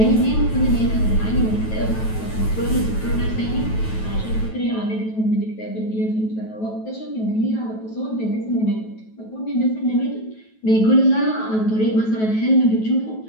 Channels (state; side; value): late; right; 9.2 ms